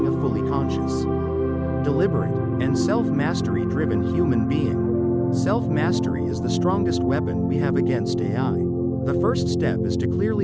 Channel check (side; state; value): both; identical; correlation 1.00